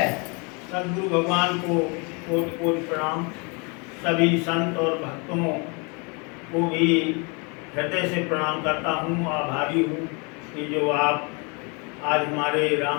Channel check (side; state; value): right; quieter; 32.0 dB